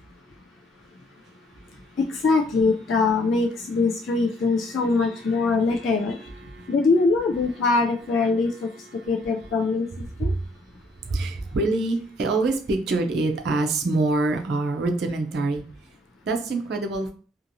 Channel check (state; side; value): normal; both; correlation 0.65